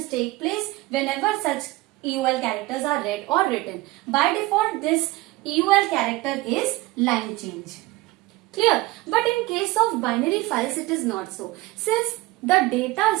take place whenever such EOL characters are read or written. By default, this EOL character is line change. Clear? But in case of binary files, it is not so. Since the data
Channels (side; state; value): left; quieter; 19.6 dB